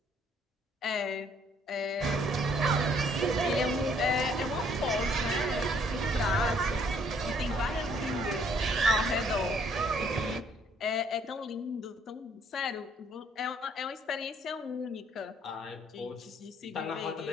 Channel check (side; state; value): both; normal; correlation 0.64